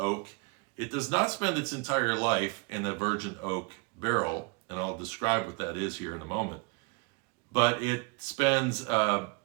It does not spend its entire life in a virgin oak barrel, and I'll describe what that is here in a moment. But it spends a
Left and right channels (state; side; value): quieter; left; 30.6 dB